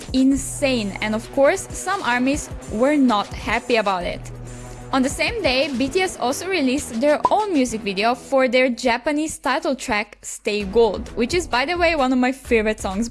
insane, and of course some ARMYs were not happy about it. On the same day, BTS also released their own music video for their Japanese title track Stay Gold, which is, by the way, one of my favorite songs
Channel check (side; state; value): both; identical; correlation 1.00